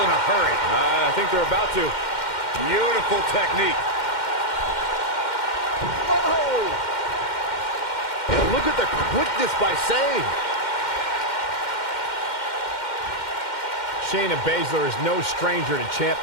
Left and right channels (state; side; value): late; right; 2.1 ms